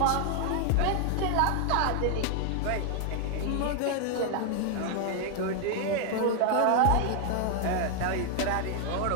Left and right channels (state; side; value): different; both; correlation 0.00